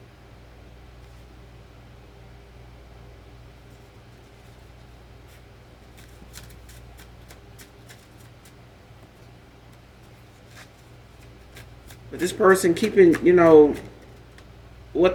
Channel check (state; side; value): identical; both; correlation 1.00